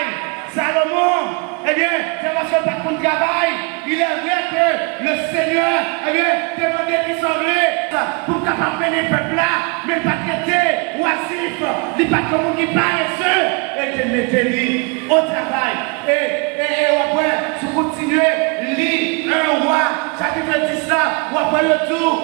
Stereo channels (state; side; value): quieter; left; 31.9 dB